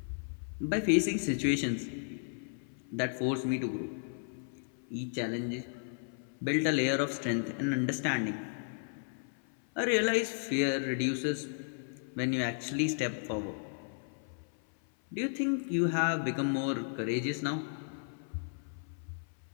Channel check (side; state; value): right; silent; 55 dB below the other